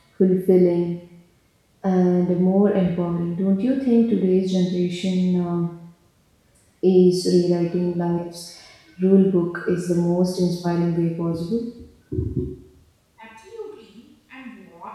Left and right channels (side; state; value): both; identical; correlation 1.00